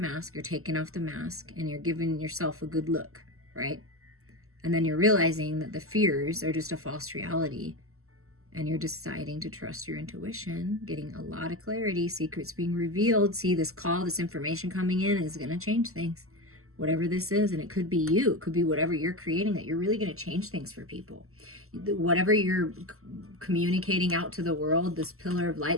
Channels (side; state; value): left; late; 0.63 ms